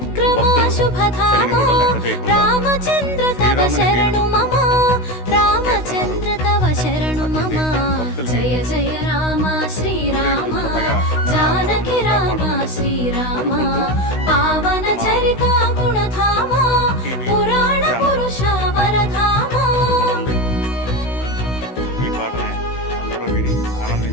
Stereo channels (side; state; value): right; late; 16 ms